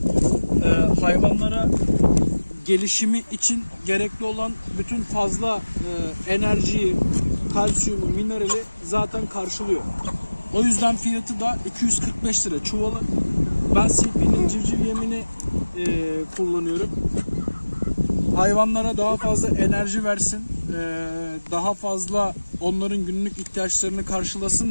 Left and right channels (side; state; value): both; inverted; correlation -1.00